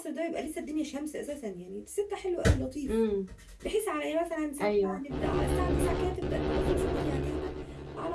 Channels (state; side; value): identical; both; correlation 1.00